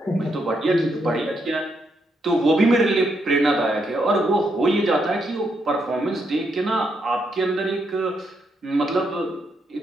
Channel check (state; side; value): normal; both; correlation 0.78